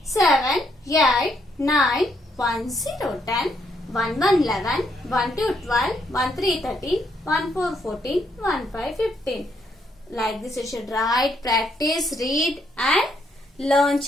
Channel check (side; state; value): both; normal; correlation 0.74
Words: 7, 8, 9, 1, 0, 10, 1, 1, 11, 1, 2, 12, 1, 3, 13, 1, 4, 14, 1, 5, 15. Like this you should write, practice, read and learn,